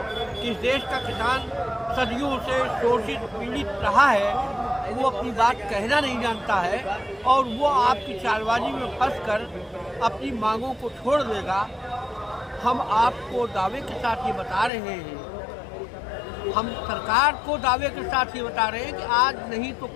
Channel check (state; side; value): drops out; right; at 14.7 s